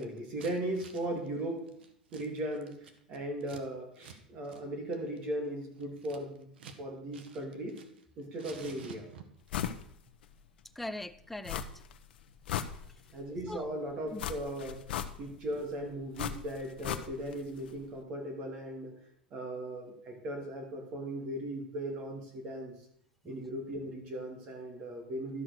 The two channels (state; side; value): normal; both; correlation 0.33